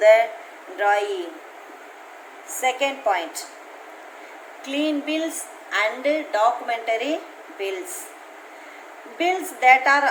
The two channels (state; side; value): identical; both; correlation 1.00